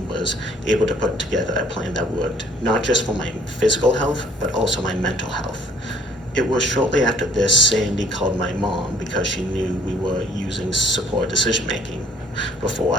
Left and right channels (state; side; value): normal; both; correlation 0.58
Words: was able to put together a plan that worked, not just for my physical health, but also my mental health. It was shortly after this Sandy called my mom because she knew we were using support decision making before